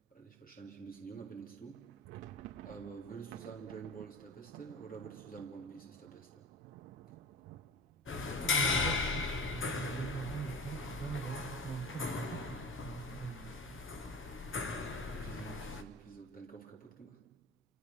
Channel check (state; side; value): normal; both; correlation 0.35